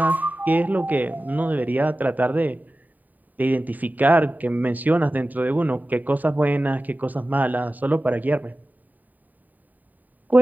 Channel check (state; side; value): late; left; 0.084 ms